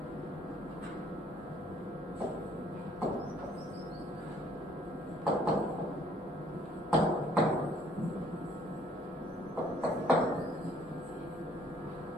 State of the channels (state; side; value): normal; both; correlation 0.61